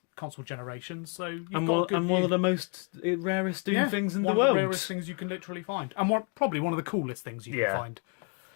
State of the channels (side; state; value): right; quieter; 34.5 dB